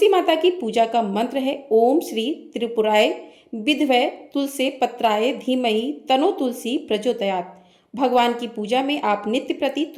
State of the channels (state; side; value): identical; both; correlation 1.00